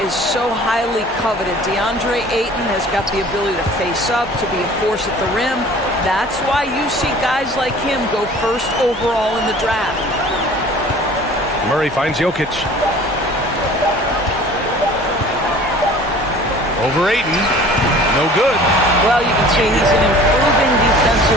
is so highly coveted. DeAndre Ayton has got the ability to face up, to be a force at the rim. That's why you see guys like him go first overall in the draft. Murray finds Jokic. Over Ayton. No good. Well, you can see he's an improving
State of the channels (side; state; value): both; normal; correlation 0.47